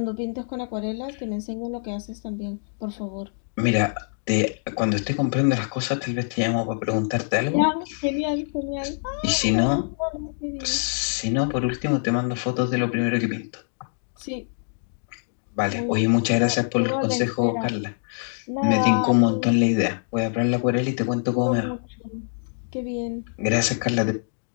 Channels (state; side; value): silent; right; digital silence